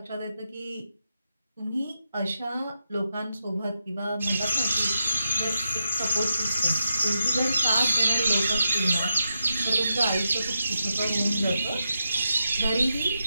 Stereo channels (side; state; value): both; inverted; correlation -0.86